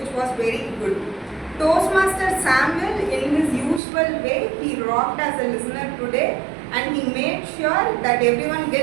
was very good. Toastmaster Samuel, in his usual way, he rocked as a listener today and he made sure that everyone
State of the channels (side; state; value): left; drops out; at 3.8 s